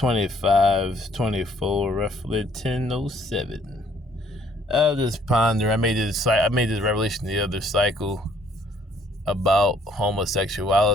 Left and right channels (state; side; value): normal; both; correlation 0.63